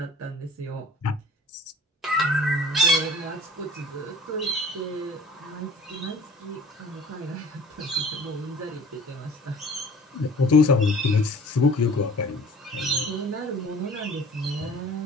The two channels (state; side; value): normal; both; correlation 0.48